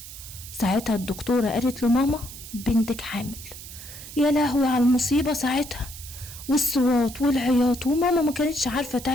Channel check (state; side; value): noise; right; hiss, 14 dB below the sound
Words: ساعتها الدكتورة قالت له ماما بنتك حامل. يا لهوي على المصيبة ساعتها، والصوات والعياط، وماما ما كانتش عارفة